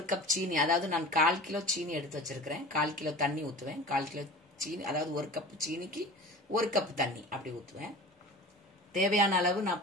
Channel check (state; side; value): normal; both; correlation 0.36